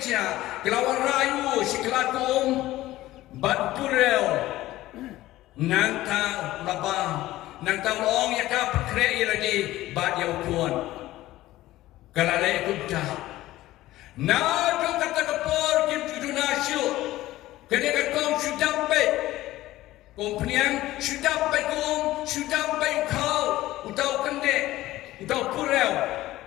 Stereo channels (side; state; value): right; quieter; 16.2 dB